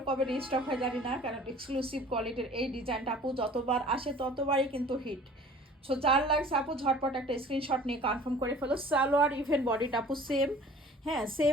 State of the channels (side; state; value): both; normal; correlation 0.48